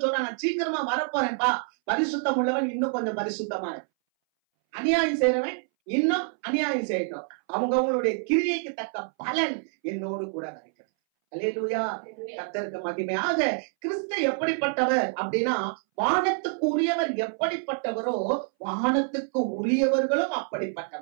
சொல்றான், நான் சீக்கிரமா வரப்போறேன்பா, பரிசுத்தம் உள்ளவன் இன்னும் கொஞ்சம் பரிசுத்தமா, அநியாயம் செய்யறவன் இன்னும் அநியாயம் செய்யட்டும், அவங்களுடைய கிரியைக்கு தக்க பலன் என்னோடு கூட இருக்கிறது. அல்லேலூயா. கர்த்தருக்கு மகிமையாக. கிறிஸ்து எப்படிப்பட்டவர் அப்படின்னா, வானத்துக்கு உரியவர் எப்படிப்பட்டவரோ வானத்துக்கு உரியவர்களும்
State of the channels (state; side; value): silent; left; 60 dB below the other